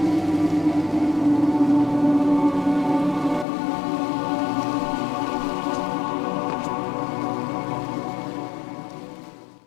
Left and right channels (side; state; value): right; drops out; at 3.5 s